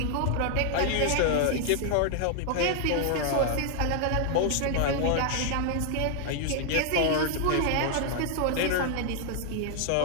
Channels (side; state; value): both; different; correlation 0.00